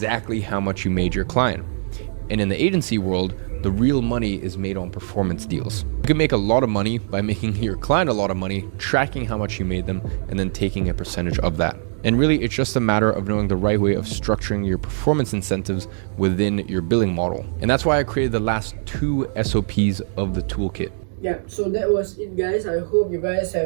how much you made your client. And in the agency world, the real money is made on performance deals. You can make a lot of money by making your client a lot of money, tracking how much you made them, and then taking a percentage of that. And really, it's just a matter of knowing the right way of structuring your performance incentives within your billing model. And that's why I created the last 2 SOPs of the toolkit. Yeah, so that was it, guys. I hope you guys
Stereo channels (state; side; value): silent; left; digital silence